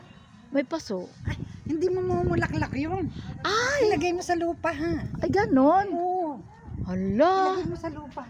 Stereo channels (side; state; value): both; identical; correlation 1.00